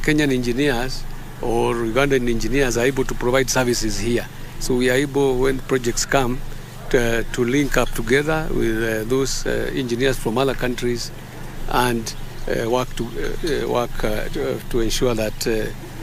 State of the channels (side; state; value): both; identical; correlation 1.00